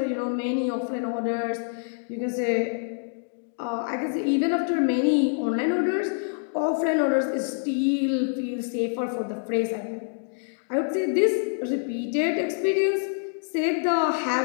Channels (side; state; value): right; silent; 61 dB below the other